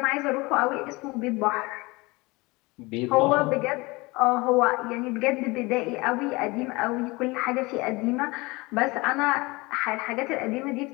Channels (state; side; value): quieter; right; 23.9 dB